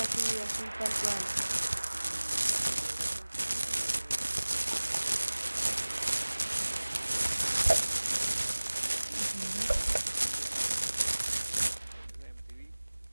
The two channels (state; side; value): inverted; both; correlation -1.00